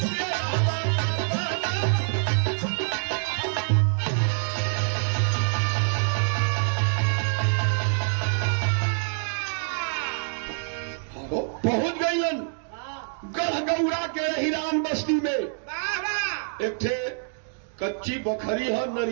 पहुंच गईलन गढ़गौरा के हिरान बस्ती में। एक ठे कच्ची बखरी है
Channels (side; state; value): left; silent; digital silence